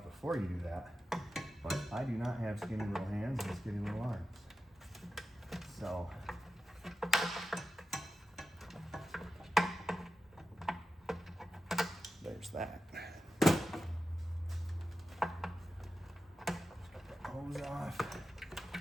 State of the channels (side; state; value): both; normal; correlation 0.92